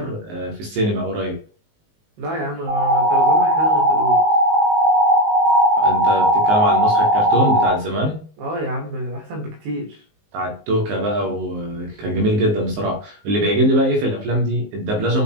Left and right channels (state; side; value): late; left; 19 ms